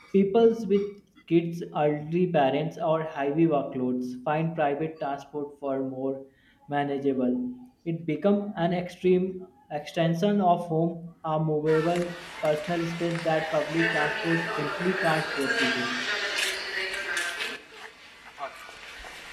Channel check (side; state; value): both; identical; correlation 1.00